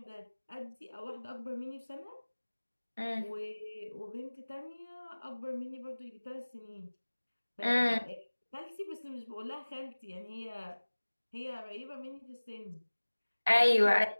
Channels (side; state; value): both; inverted; correlation -1.00